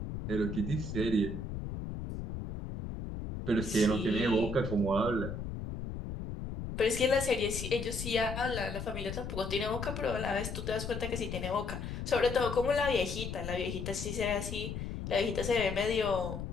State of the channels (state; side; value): noise; left; rumble, 6 dB below the sound